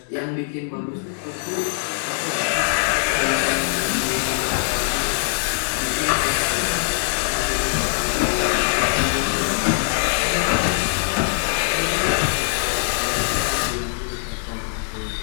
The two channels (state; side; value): silent; right; digital silence